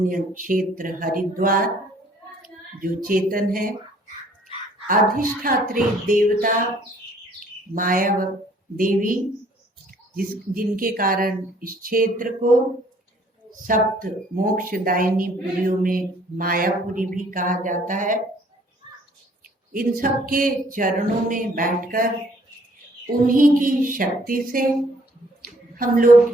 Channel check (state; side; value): normal; both; correlation 0.60